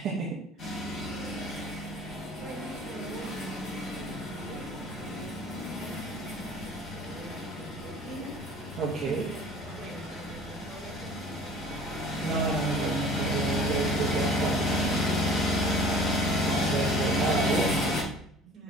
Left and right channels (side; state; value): both; normal; correlation 0.46